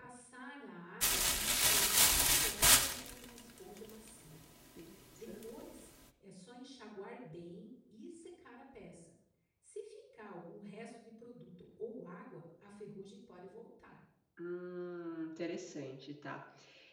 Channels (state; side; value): identical; both; correlation 1.00